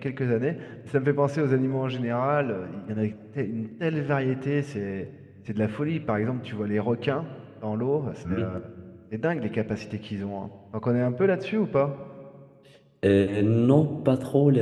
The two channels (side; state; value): both; identical; correlation 1.00